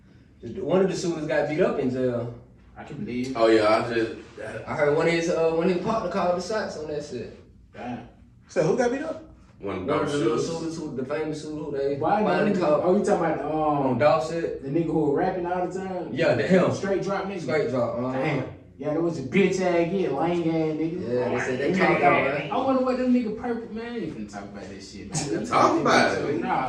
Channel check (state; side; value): identical; both; correlation 1.00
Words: heard one of the shooters got beat up in jail. I can believe. Oh yeah, I just I heard one of his when his partner called the shots on that shit. Damn. So who got beat up? one of One of those the little shooters. shooters who the famous shooter who they Why finally not? caught Oh, you talking about on dog shit. the nigga who was rapping all the time? Yeah, the him. Straight drop nigga. Straight drop. Damn. Yeah, there was a bitch ass kid, lame ass nigga. Yeah, they said they caught that, man. I wonder what them nigga purple man. I ain't finna talk about that shit, man. Talk about it.